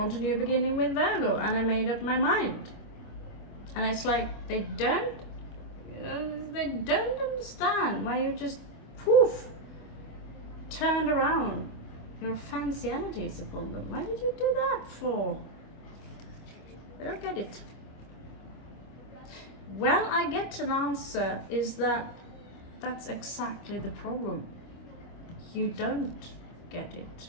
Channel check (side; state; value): right; late; 25 ms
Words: a new beginning with Virgo, and I made up my mind. And it's like they don't, you know, they don't understand why you just poof turned around your fancy energies upon them. Why did you do that for? I don't get it. Well, I get an answer, is that that's exactly the problem. You don't get it.